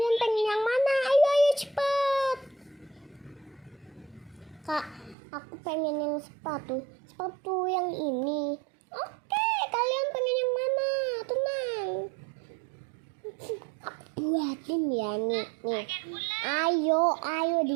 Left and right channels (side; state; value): left; drops out; at 5.2 s